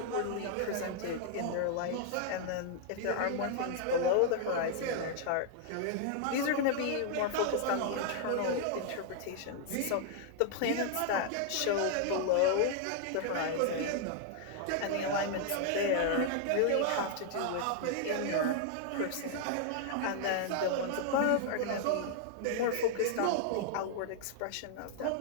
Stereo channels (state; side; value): different; both; correlation 0.00